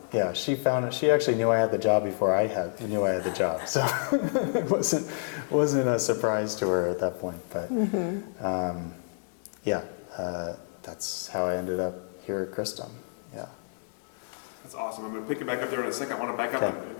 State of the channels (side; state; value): right; silent; digital silence